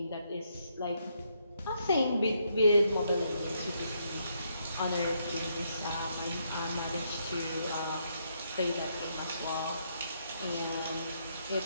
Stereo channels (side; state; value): both; inverted; correlation -0.75